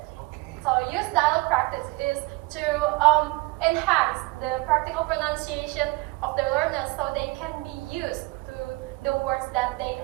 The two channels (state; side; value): quieter; left; 23.0 dB